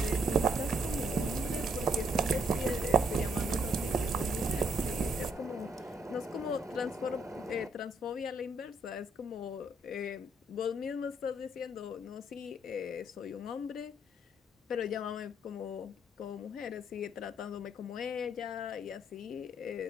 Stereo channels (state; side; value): normal; both; correlation 0.70